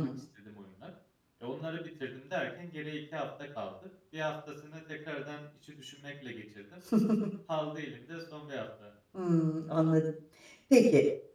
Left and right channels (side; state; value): both; identical; correlation 1.00